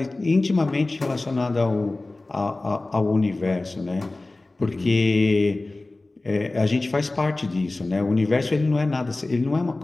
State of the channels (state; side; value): quieter; right; 3.0 dB